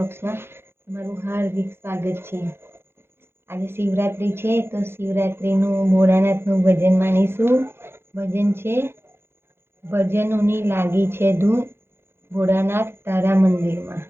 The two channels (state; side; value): late; left; 0.11 ms